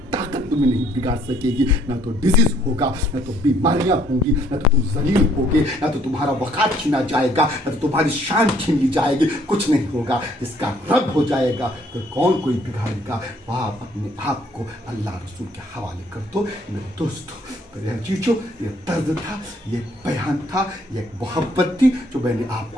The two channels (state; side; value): normal; both; correlation 0.64